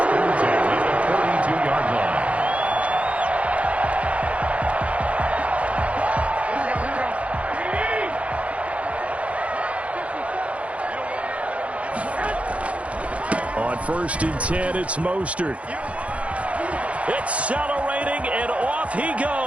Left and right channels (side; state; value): left; late; 0.064 ms